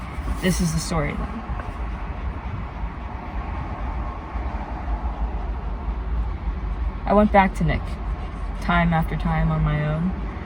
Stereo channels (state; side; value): identical; both; correlation 1.00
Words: This is the story then. I went back to Nick, time after time on my own,